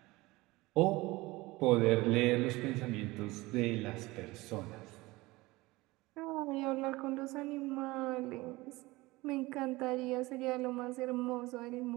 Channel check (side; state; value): left; quieter; 21.0 dB